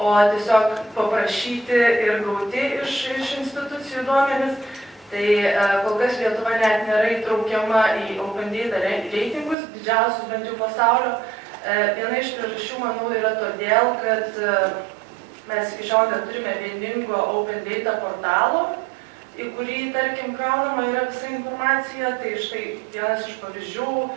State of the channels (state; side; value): drops out; left; at 9.6 s